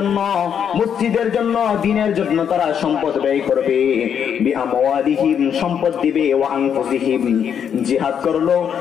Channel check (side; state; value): right; quieter; 8.1 dB